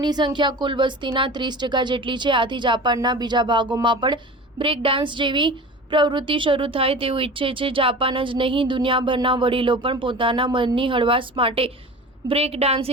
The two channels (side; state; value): both; normal; correlation 0.36